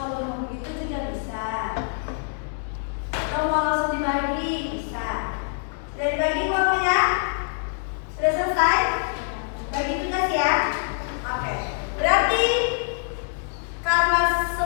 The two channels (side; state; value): right; silent; 62 dB below the other